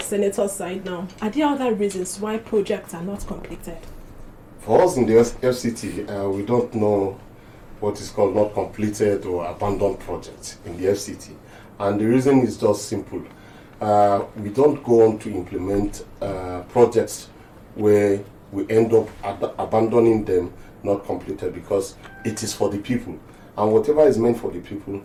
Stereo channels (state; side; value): identical; both; correlation 1.00